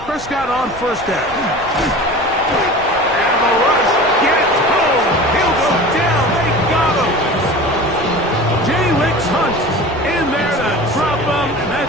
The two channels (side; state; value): left; noise; rumble, 18 dB below the sound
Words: Prescott on 1st down. And the rush gets home. He'll go down. They got him. Jalen Hunt in there to drop him, and